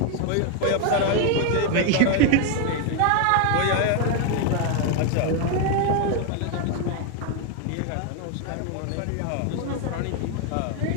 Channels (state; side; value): different; both; correlation 0.01